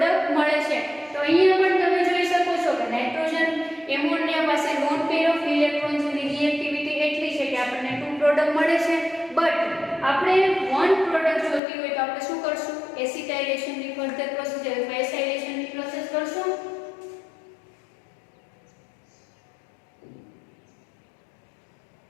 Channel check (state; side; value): drops out; right; at 11.6 s